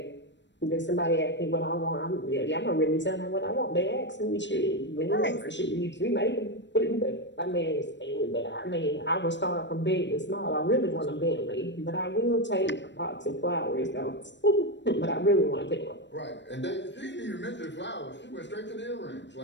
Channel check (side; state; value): right; late; 0.52 ms